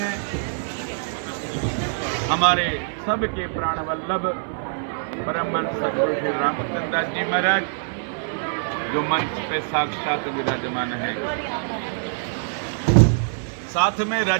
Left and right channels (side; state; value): left; silent; digital silence